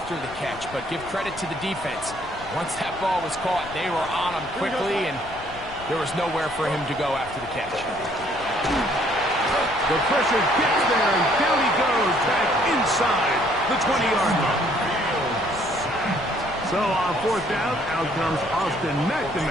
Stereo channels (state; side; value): noise; left; rumble, 18 dB below the sound